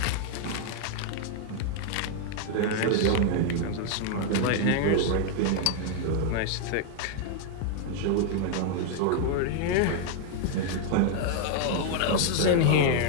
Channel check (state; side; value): different; both; correlation 0.00